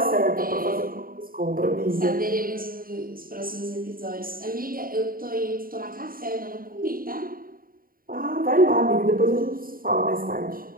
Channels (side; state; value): left; late; 0.42 ms